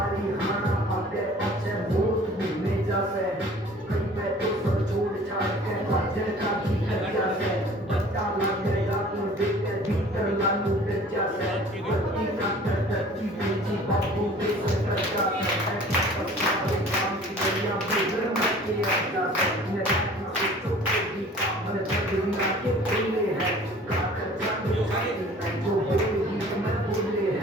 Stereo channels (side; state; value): both; normal; correlation 0.48